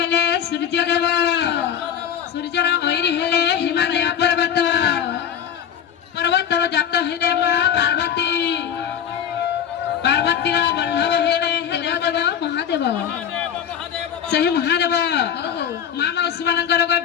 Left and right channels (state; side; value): quieter; right; 8.9 dB